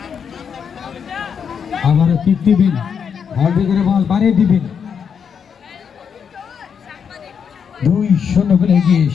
আমারও কিক দিবেন, অল্প করে বল বাড়িয়ে দিবেন। 2-0 গোলে এগিয়ে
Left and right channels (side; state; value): right; quieter; 7.0 dB